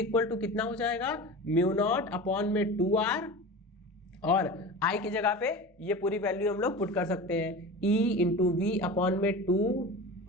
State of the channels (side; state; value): both; normal; correlation 0.31